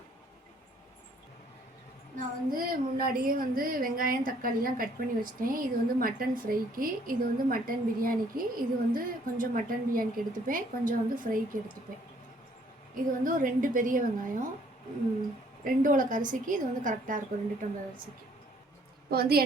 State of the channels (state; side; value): normal; both; correlation 0.62